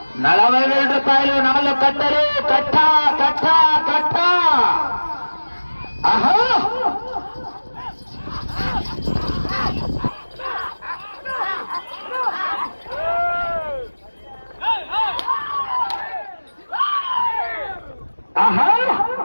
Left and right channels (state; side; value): inverted; both; correlation -1.00